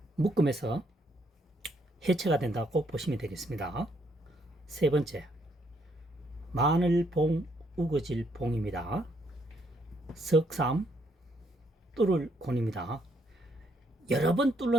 묶음에서 해체가 된다고 보시면 되겠습니다. 세 번째 마늘봉 우거질 봉입니다. 석삼 뚫을 권입니다. 여러 번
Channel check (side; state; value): both; normal; correlation 0.72